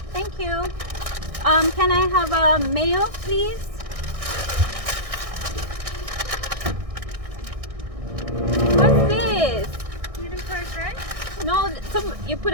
Thank you. Can I have a mayo, please? What's this? Medium fries, right? No, you put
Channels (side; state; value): left; late; 1.6 ms